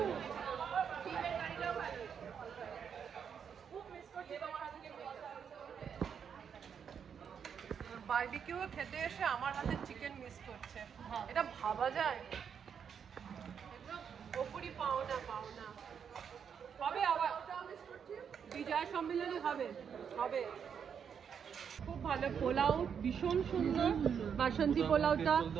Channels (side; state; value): left; quieter; 7.4 dB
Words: বারবিকিউ খেতে এসে আমার হাতে চিকেন মিস করছে, এটা ভাবা যায়? ওপরই পাওনা হবে, আবার বিজয় সম্মেলনী হবে। খুব ভালো পোলাও, ভীষণ সুন্দর বাসন্তী পোলাওটা,